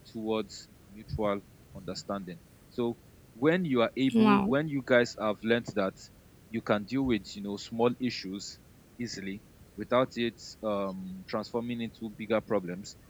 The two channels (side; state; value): both; identical; correlation 1.00